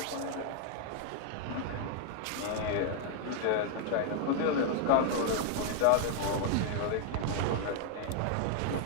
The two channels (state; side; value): different; both; correlation 0.00